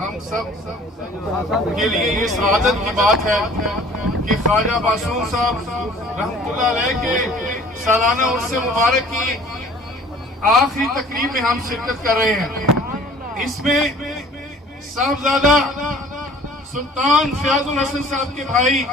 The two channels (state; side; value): normal; both; correlation 0.50